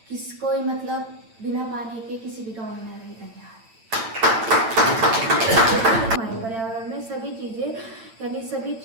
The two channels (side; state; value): left; late; 8.9 ms